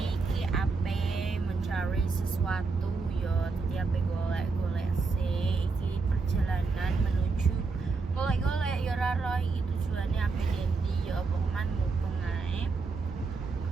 iki ape mencari sesuatu yo. Jadi ape golek-golek sih. Iki perjalanan menuju golek-golek yo raro iki tujuannya ape dendi yo pokoknya mumpung ae.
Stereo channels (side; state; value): left; quieter; 4.3 dB